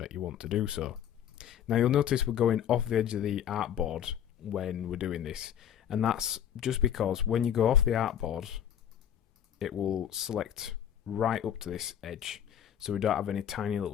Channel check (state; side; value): quieter; right; 9.6 dB